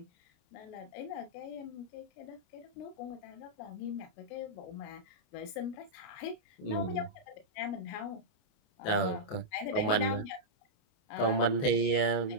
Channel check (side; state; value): right; late; 28 ms